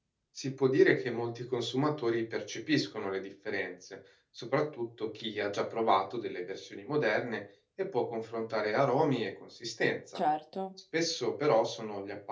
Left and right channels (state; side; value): identical; both; correlation 1.00